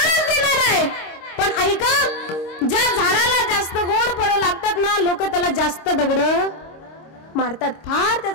देणार आहे. पण ऐका, ज्या झाडाला जास्त गोड फळं लागतात ना, लोक त्याला जास्त दगड मारतात. फार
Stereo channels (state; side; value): late; right; 26 ms